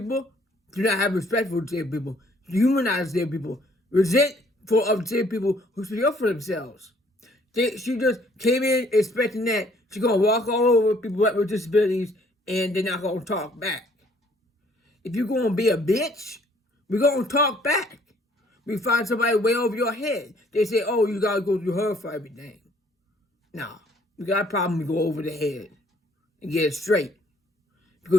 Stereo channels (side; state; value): both; normal; correlation 0.62